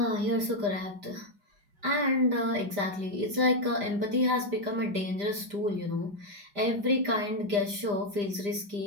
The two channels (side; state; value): left; late; 5.0 ms